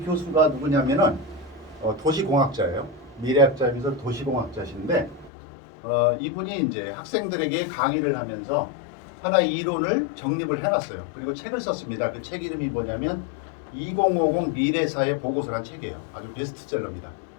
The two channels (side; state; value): right; drops out; at 5.3 s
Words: 교수가 누구냐면은 도시공학자예요. 미래학자이면서 도시공학자신데, 이분이 이제 학생들에게 강의를 하면서 하나의 이론을 정립을 해놨어요. 그리고 책을 썼습니다. 그 책 이름이 뭐냐면 2050 미래사회 보고서란 책이에요. 아주 베스트셀러입니다.